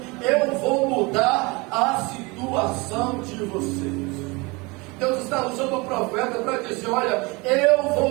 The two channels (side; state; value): left; quieter; 26.0 dB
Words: eu vou mudar a situação de vocês. Deus está usando o profeta para dizer: olha, eu